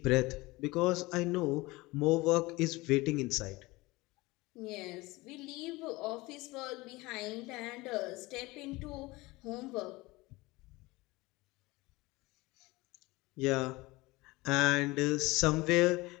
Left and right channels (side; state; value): right; quieter; 21.7 dB